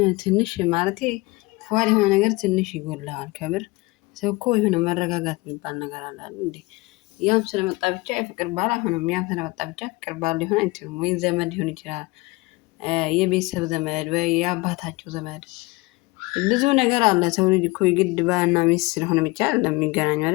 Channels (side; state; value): right; quieter; 23.2 dB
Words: ትንሽ ማለቴ ፉአድ የሆነ ነገር ትንሽ ይጎልሃል። ከምር ሰው እኮ የሆነ መረጋጋት የሚባል ነገር አለ እንዴ? ያም ስለመጣ ብቻ የፍቅር ባል አይሆንም። ያም ስለመጣ ብቻ ፍቅር ባል ሊሆን አይችልም። ወይ ዘመድ ሊሆን ይችላል፣ የቤተሰብ ዘመድ ወይ የአባታቸው ዘመድ፣ ብዙ ነገር አለ። ሰው ልጅ እኮ የግድ ባልና ሚስት ስለሆነ ብቻ ለሚገናኙ